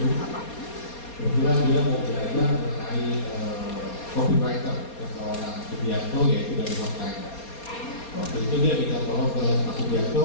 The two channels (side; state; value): right; late; 4.2 ms